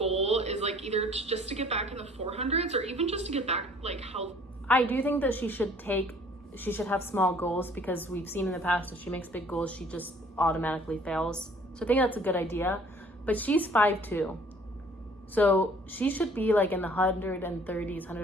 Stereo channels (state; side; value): normal; both; correlation 0.55